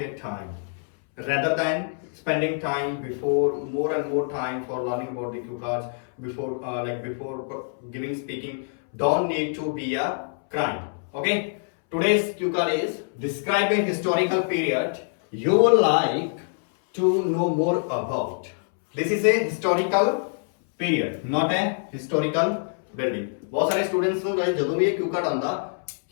time, rather than spending time before more and more time for learning about the cue cards before before giving speaking. Don't need to be a crime. Okay. Today's cue card is describe a historical period you would like to know more about. This is a historical period, not a historical building. बहुत सारे students ਨੂੰ ਜਦੋਂ ਵੀ ਇਹ cue card ਆਉਂਦਾ,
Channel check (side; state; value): right; silent; 62 dB below the other